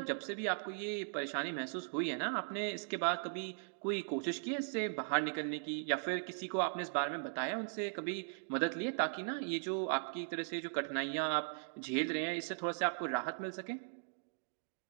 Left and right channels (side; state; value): left; silent; digital silence